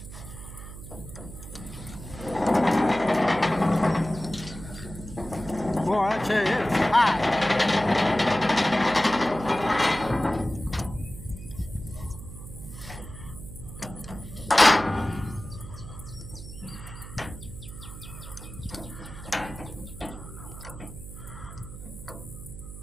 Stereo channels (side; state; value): right; noise; hum, 12 dB below the sound